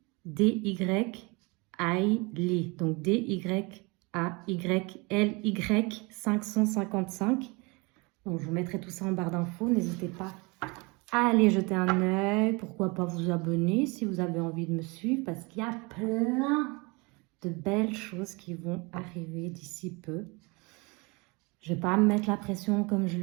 Donc, D-Y-A-Y-L-Y 555. Donc, je vous mettrai tout ça en barre d'infos. N'hésitez pas à aller jeter un œil. Pourquoi pas vous abonner si vous avez envie de me suivre. Parce qu'il y a plein de belles choses qui vont arriver d'ici peu. Je ne vais pas me mettre la pression comme je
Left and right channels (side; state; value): left; quieter; 27.6 dB